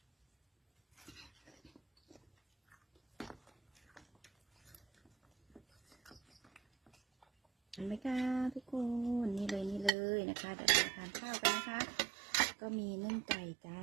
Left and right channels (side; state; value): left; drops out; at 9.9 s